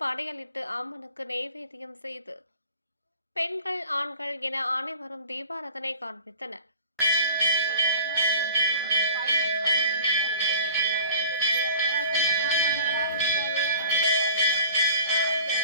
படையலிட்டு அம்மனுக்கு நெய்வேத்தியம் செய்து பெண்கள், ஆண்கள் என அனைவரும் தீபாராதனை காண்பித்தனர்.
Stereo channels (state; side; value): inverted; both; correlation -0.44